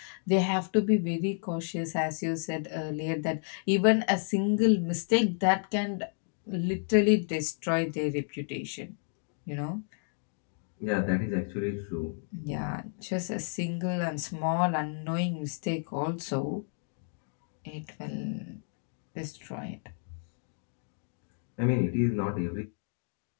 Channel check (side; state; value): right; silent; 57 dB below the other